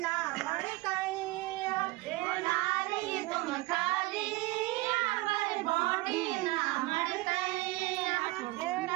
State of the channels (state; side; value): quieter; left; 21.0 dB